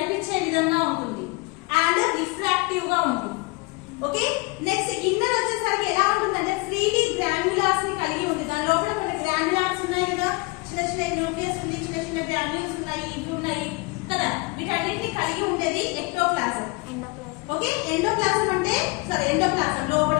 విధంగా ఉంటుంది, అండ్ రిఫ్రాక్టివ్ గా ఉంటుంది. ఓకే, నెక్స్ట్ ఇన్నర్ వచ్చేసరికి ఎలా ఉంటుందంటే ఫ్రీలీ గ్రాన్యులాస్ ని కలిగి ఉంటుంది. దాని లోపల కొన్ని గ్రాన్యులాస్ ఉన్నాయి కదా, చిన్న చిన్న న్యూక్లియస్ ఉంది, చిన్న చిన్న గ్రాన్యుల్స్ ఉన్నాయి, ఇవి ఉన్నాయి కదా, వీటన్నిటిని కలిగి ఉండేది ఎక్టోప్లాజం. ఓకే, ఎండోప్లాజం అంటే ఎండోప్లాజం లోపల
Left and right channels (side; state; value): right; quieter; 25.9 dB